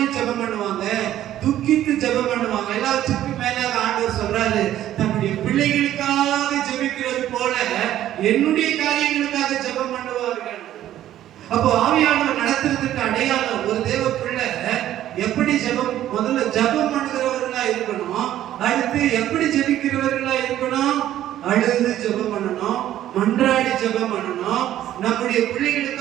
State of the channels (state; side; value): quieter; left; 12.5 dB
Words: ஜெபம் பண்ணுவாங்க, துக்கித்து ஜெபம் பண்ணுவாங்க. எல்லாத்துக்கும் மேலாக ஆண்டவர் சொல்றாரு, தன்னுடைய பிள்ளைகளுக்காக ஜெபிக்கிறது போல என்னுடைய காரியங்களுக்காக ஜெபம் பண்ணுவார்கள். அப்போ ஆவியானவர் நடத்துறதுக்கு அடையாளம், ஒரு தேவ பிள்ளை எப்படி ஜெபம், முதல்ல ஜெபம் பண்ணுகிறவர்களா இருக்கணும். அடுத்து எப்படி ஜெபிக்கிறவர்களா இருக்கணும்? அழுது ஜெபம் பண்ணணும், மன்றாடி ஜெபம் பண்ணணும். நம்முடைய